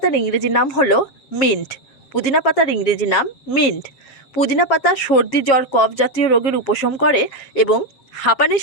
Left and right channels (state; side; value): late; right; 7.3 ms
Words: ইংরেজি নাম হলো মিন্ট। পুদিনা পাতার ইংরেজি নাম মিন্ট। পুদিনা পাতা সর্দি জ্বর কফ জাতীয় রোগের উপশম করে এবং হাঁপানি